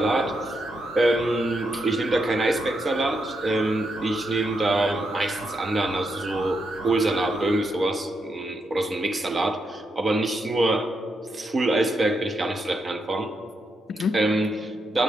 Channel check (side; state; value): both; normal; correlation 0.82